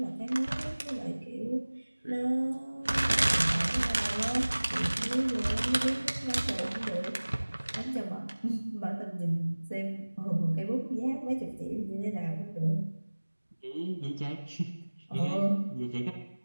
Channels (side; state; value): both; inverted; correlation -1.00